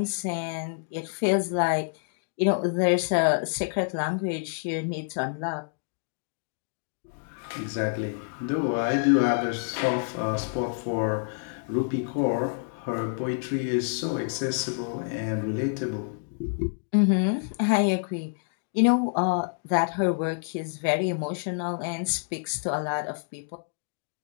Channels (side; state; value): right; silent; digital silence